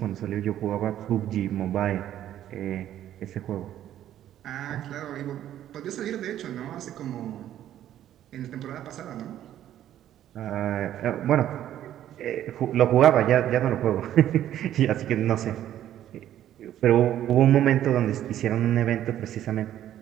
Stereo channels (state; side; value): quieter; left; 11.7 dB